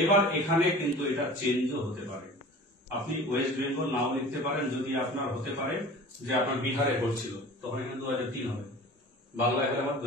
এখানে কিন্তু এটা চেঞ্জও হতে পারে, আপনি ওয়েস্ট বেঙ্গল নাও লিখতে পারেন, যদি আপনার হতে পারে যে আপনার বিহারে পড়ছিল, তখন এখানে 2003 হবে, বাংলায় হলে আমার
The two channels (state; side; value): normal; both; correlation 0.41